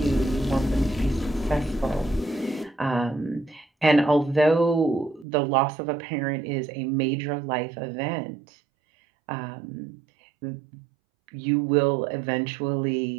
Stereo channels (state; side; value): drops out; left; at 5.2 s